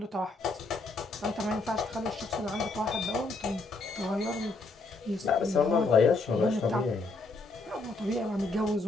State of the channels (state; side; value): quieter; right; 3.4 dB